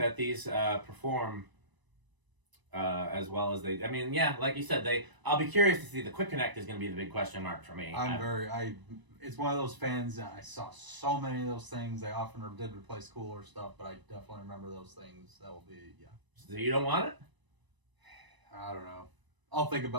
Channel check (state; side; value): late; left; 1.0 ms